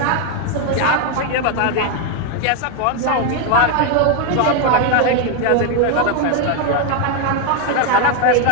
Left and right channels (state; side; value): different; both; correlation 0.01